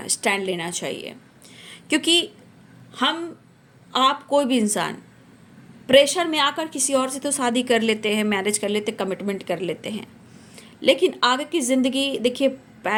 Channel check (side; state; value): both; identical; correlation 1.00